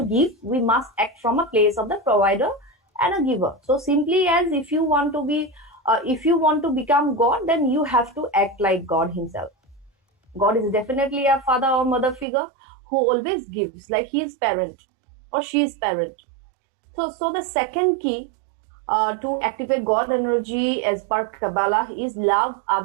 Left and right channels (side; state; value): left; drops out; at 12.2 s